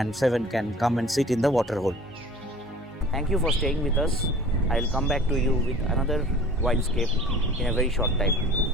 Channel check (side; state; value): both; normal; correlation 0.46